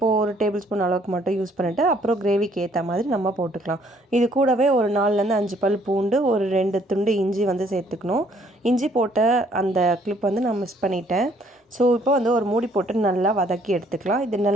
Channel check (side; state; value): both; normal; correlation 0.63